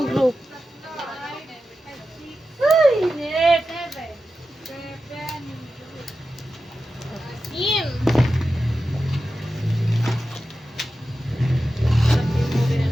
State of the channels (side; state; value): both; normal; correlation 0.92